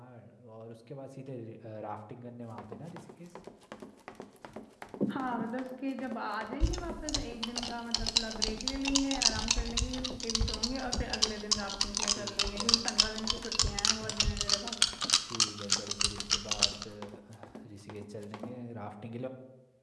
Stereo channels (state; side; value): identical; both; correlation 1.00